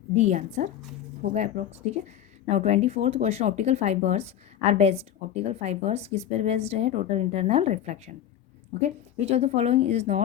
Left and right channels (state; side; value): quieter; right; 10.8 dB